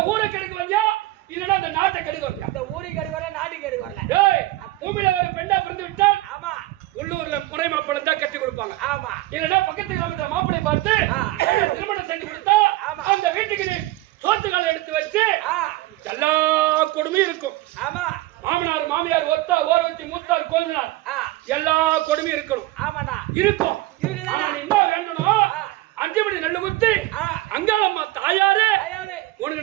ஊரை கெடுக்க வந்தியா இல்லன்னா அந்த நாட்டை கெடுக்க வந்தியா? அந்த ஊரை கெடுக்க வரல, நாட்டு கெடுக்க வரல. பூமியில ஒரு பெண்ணா பிறந்து விட்டால் ஆமா உள்ளூர்ல முறை மாப்பிள்ளை தான் கட்டி கொடுப்பாங்க. ஆமா இல்லன்னா பக்கத்து கிராமத்துல மாப்பிள்ளை பார்த்து திருமணம் செஞ்சு கொடுத்தா அந்த வீட்டுக்கு நீ சோத்துக்கால எடுத்து வச்சு எல்லா கொடுமையும் இருக்கும். ஆமா மாமனார் மாமியார் ஒத்தா ஓரவத்தி மூத்தார் கோதினார் எல்லா கொடுமையும் இருக்கணும். ஆமாடா இருக்கும். என்ன வேண்டணும்? 5 மணி நெல்லு குத்தி அங்காளம்மா தாயாரே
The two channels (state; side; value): quieter; left; 17.8 dB